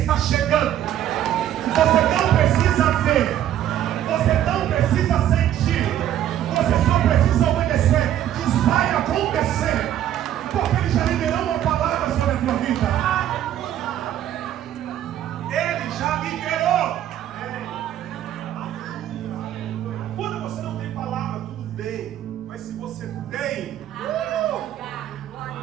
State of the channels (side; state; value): left; quieter; 11.5 dB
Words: chegando. Você não precisa ver. Você não precisa sentir. Você só precisa obedecer. Diz, vai acontecer. Porque ele já liberou uma palavra sobre a tua vida. Ele já liberou. Quando você não tem palavra, tudo bem. Mas se você tem,